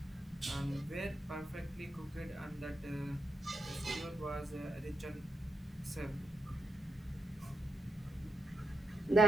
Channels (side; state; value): both; normal; correlation 0.84